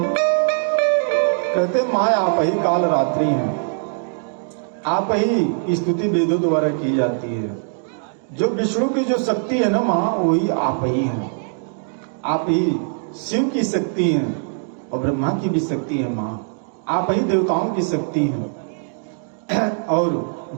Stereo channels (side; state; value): left; silent; 64 dB below the other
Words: कहते माँ आप ही काल रात्रि हैं, आप ही स्तुति वेदों द्वारा की जाती है। जो विष्णु की जो शक्ति है ना माँ, वही आप ही हैं। आप ही शिव की शक्ति हैं और ब्रह्मा की भी शक्ति है माँ। आप ही देवताओं की शक्ति हैं और